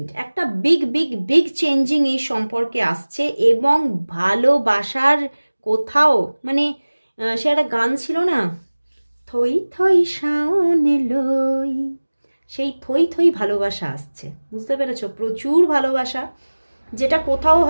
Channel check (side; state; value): both; inverted; correlation -1.00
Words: একটা বিগ বিগ বিগ চেঞ্জিং এই সম্পর্কে আসছে এবং ভালোবাসার কোথাও মানে সে একটা গান ছিল না, থই থই শাওনে লই, সেই থই থই ভালোবাসা আসছে, বুঝতে পেরেছো? প্রচুর ভালোবাসা, যেটা কোথাও